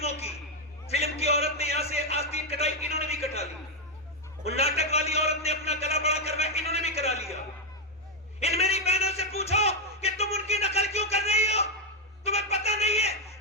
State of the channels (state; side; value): normal; both; correlation 0.02